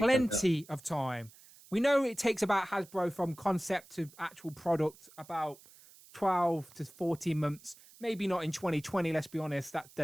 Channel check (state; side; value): noise; right; hiss, 23 dB below the sound